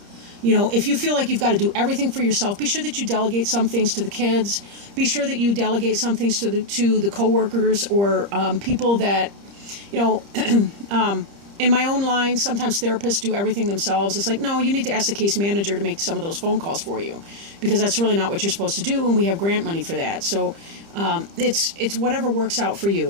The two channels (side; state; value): left; late; 30 ms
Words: You know, if you feel like you've got to do everything for yourself, be sure that you delegate some things to the kids. Be sure that you delegate some things to the coworkers or people that, you know, in my own line, sometimes therapists do everything themselves. It's like, no, you need to ask the case manager to make some of those phone calls for you, because that's really not what you're supposed to do, and we have grant money for that. So it's whatever works out for you,